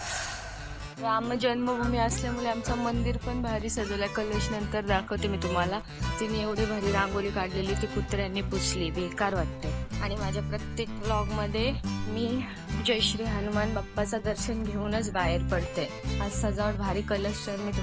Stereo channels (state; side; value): identical; both; correlation 1.00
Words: राम जन्मभूमी असल्यामुळे आमचं मंदिर पण भारी सजवलंय. कलश नंतर दाखवते मी तुम्हाला. तिने एवढी भारी रांगोळी काढलेली, ती कुत्र्यांनी पुसली, बेकार वाटते. आणि माझ्या प्रत्येक व्लॉगमध्ये मी जय श्री हनुमान बाप्पाचं दर्शन घेऊनच बाहेर पडते. आज सजावट भारी, कलश तर मी